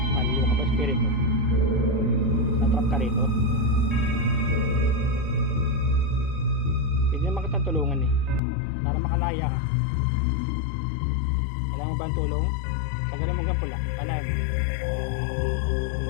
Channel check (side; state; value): right; drops out; at 8.4 s